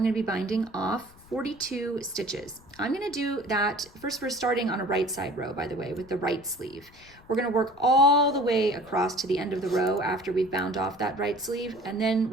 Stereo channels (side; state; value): left; noise; rumble, 25 dB below the sound